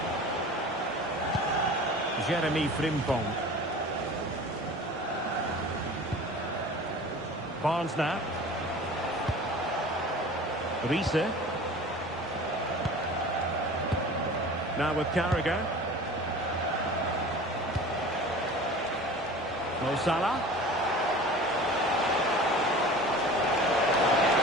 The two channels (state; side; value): normal; both; correlation 0.40